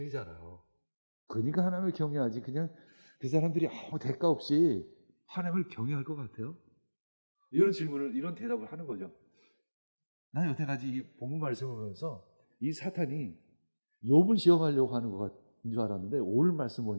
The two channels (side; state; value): both; inverted; correlation -1.00